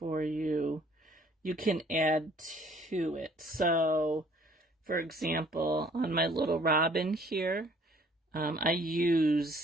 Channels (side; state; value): both; normal; correlation 0.58